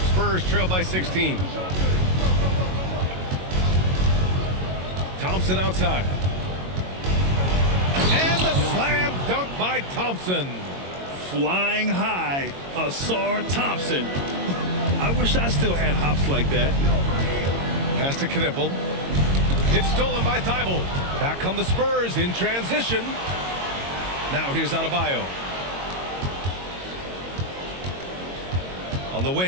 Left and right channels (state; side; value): late; left; 22 ms